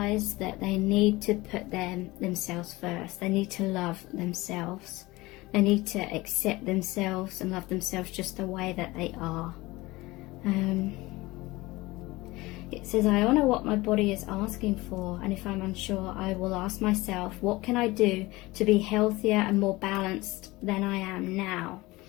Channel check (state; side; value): quieter; right; 20.7 dB